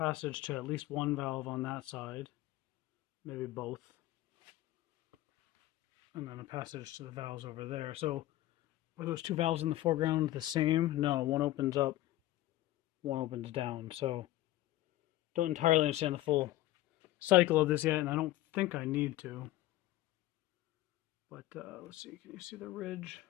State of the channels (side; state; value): right; quieter; 16.0 dB